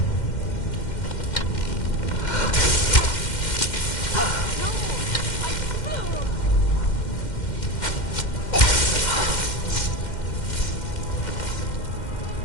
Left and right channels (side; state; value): right; late; 2.1 ms